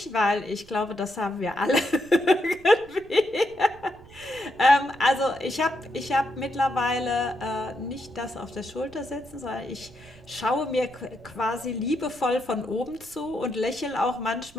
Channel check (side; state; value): right; noise; rumble, 23 dB below the sound